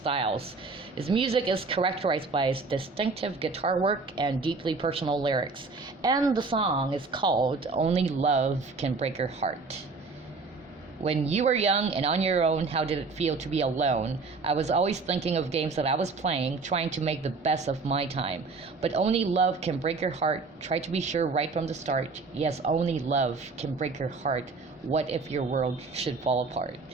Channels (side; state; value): left; quieter; 4.1 dB